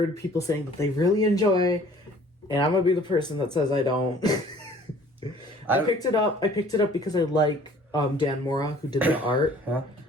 people saying that they really enjoy, and I'm gonna be the person that says I don't. I picked it up because I like Dan Mora, who did the art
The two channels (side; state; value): both; normal; correlation 0.53